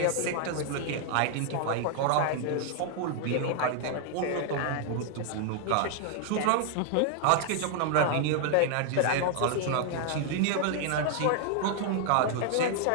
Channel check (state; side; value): different; both; correlation 0.00